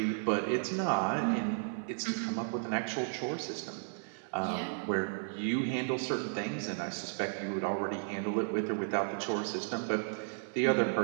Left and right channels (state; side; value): silent; left; 55 dB below the other